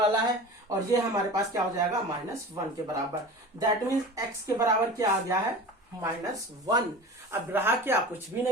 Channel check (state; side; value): normal; both; correlation 0.35